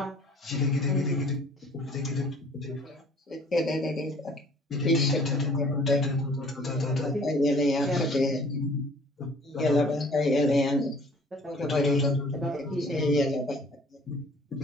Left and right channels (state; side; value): normal; both; correlation 0.53